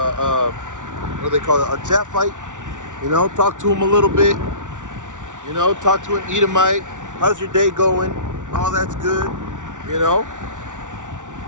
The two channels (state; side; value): late; left; 0.87 ms